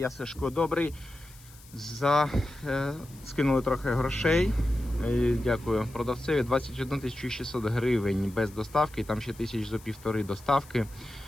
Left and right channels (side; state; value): left; noise; hiss, 23 dB below the sound